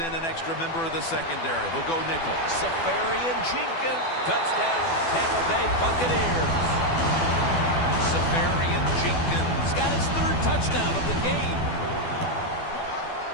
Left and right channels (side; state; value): right; late; 12 ms